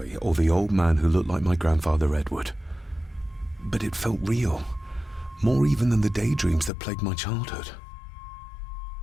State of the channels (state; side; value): drops out; right; at 6.7 s